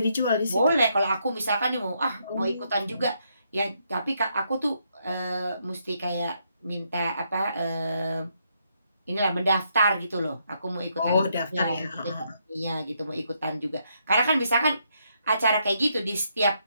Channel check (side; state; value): both; inverted; correlation -0.76